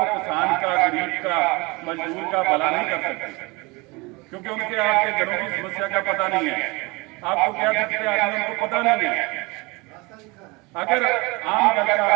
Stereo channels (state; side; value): quieter; left; 25.4 dB